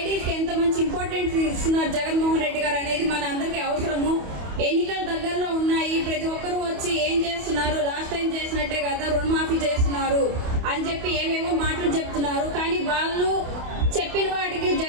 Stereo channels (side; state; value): left; late; 28 ms